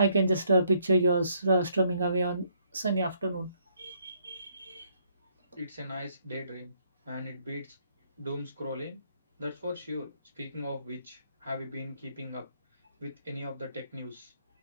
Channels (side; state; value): both; inverted; correlation -0.69